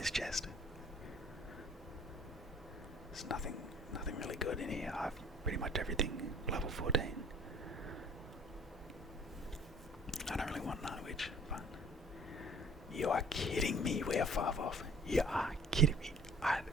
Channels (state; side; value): normal; both; correlation 0.53